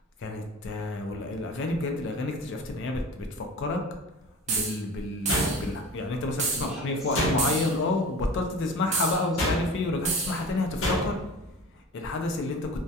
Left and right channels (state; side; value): normal; both; correlation 0.37